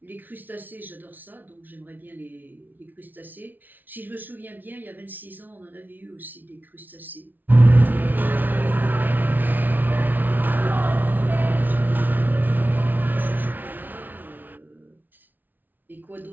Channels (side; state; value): left; late; 0.086 ms